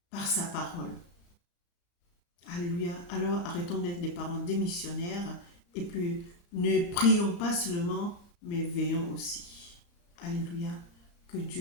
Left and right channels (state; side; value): late; right; 35 ms